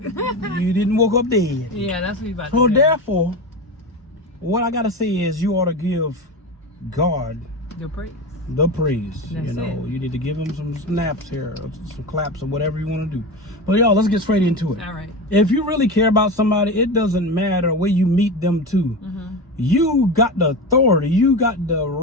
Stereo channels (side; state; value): both; normal; correlation 0.23